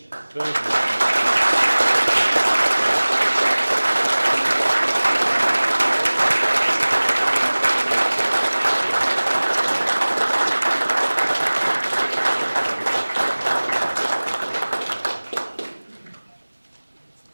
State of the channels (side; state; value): both; inverted; correlation -1.00